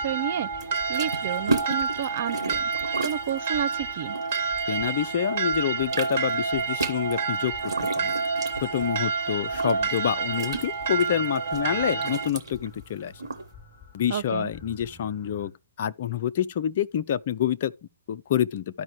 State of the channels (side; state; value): both; inverted; correlation -0.52